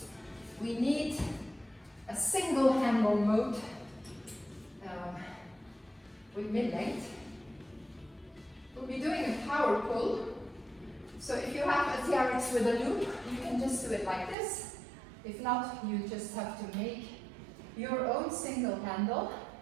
we need a single handle mode with mid-length. We'll be doing a power pull. So if you have a TRX with a loop, you can just do it like this. If not, you just have to make your own single handle.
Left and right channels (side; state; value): left; drops out; at 14.4 s